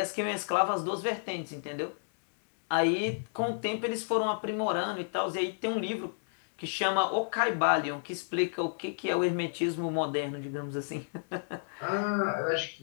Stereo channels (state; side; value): silent; right; digital silence